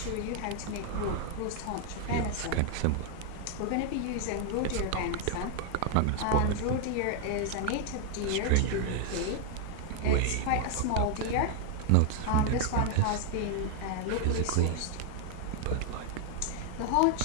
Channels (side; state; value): both; different; correlation 0.00